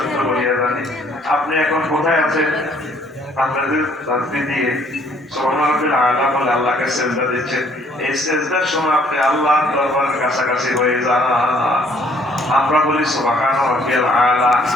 বলিয়া জানি। আপনি এখন কোথায় আছেন? আপনাদের শান্তি দিয়ে সুবহানাল্লাহিল আলা বলে আল্লাহকে সেজদা দিচ্ছেন। এই সেজদার সময় আপনি আল্লাহর দরবারের কাছাকাছি হয়ে যান। আমরা বলি সুবহানাল্লাহিল আলা,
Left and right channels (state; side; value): normal; both; correlation 0.62